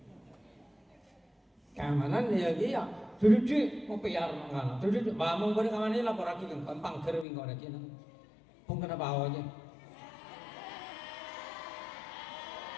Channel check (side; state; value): right; drops out; at 7.2 s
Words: Keamanan ya dia. Duduk mau piar mangana. Duduk bangun pada kamane lapor lagi kan pangger wing ora kene. Pun kena bawa aja.